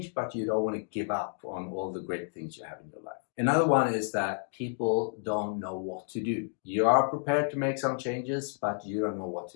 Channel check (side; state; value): right; silent; digital silence